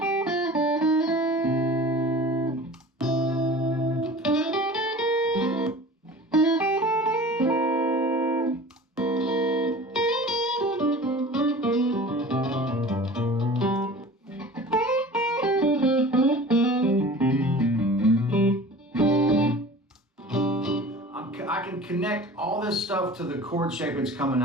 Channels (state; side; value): normal; both; correlation 0.40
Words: I can connect all this stuff to the chord shape it's coming